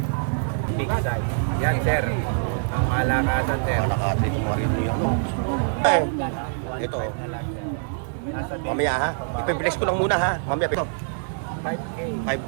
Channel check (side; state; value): left; silent; digital silence